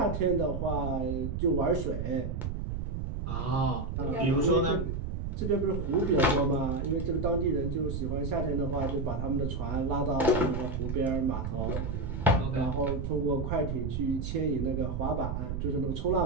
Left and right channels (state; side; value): noise; right; rumble, 3 dB below the sound